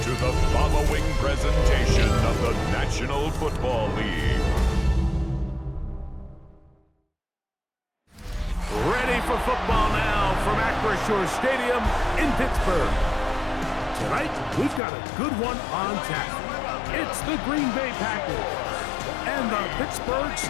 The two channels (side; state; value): right; drops out; at 14.8 s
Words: the following presentation of the National Football League. Ready for football now from Acrisure Stadium in Pittsburgh. Tonight, we've got a good one on tap. It's the Green Bay Packers and the Pittsburgh